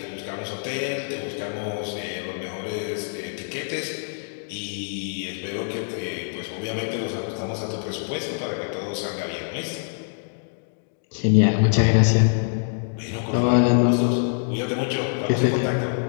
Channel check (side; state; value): right; silent; digital silence